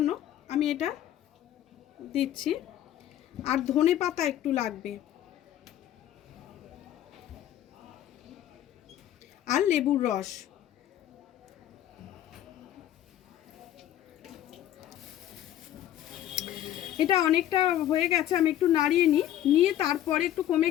আমি এটা দিচ্ছি। আর ধনে পাতা একটু লাগবে, আর লেবুর রস। এটা অনেকটা হয়ে গেছে, আমি একটু নাড়িয়ে নিয়ে তারপরে একটু কমে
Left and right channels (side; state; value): right; quieter; 12.1 dB